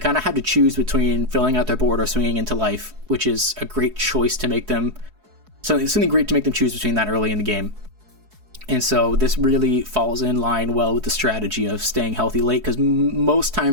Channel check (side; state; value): left; late; 4.7 ms